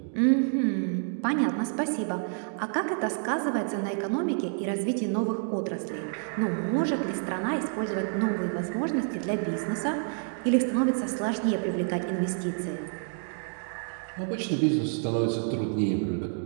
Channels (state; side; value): silent; left; 59 dB below the other